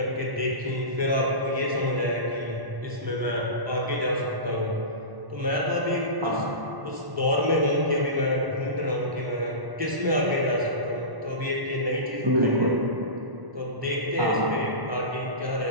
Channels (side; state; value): left; late; 1.1 ms